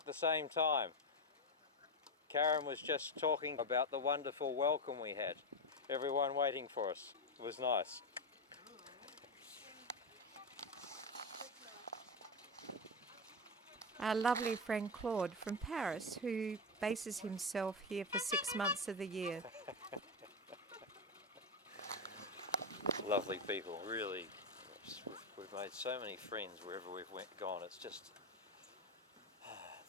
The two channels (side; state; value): both; normal; correlation 0.11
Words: the same time. Karen was just talking about the wonderful welcome we had. Everyone waiting for us. It was nice. Our lovely friend Claude from Paris, who bases himself here for 6 months of the year. Lovely people, really. We've made so many friends wherever we've gone. It's just,